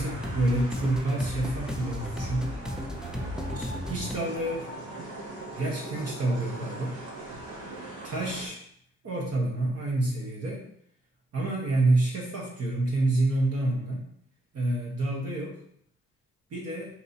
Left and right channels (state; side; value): normal; both; correlation 0.76